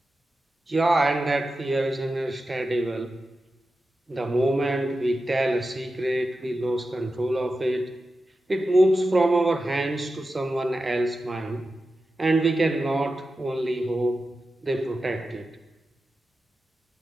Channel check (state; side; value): normal; both; correlation 0.92